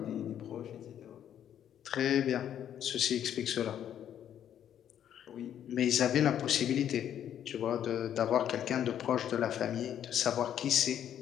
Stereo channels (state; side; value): quieter; right; 10.0 dB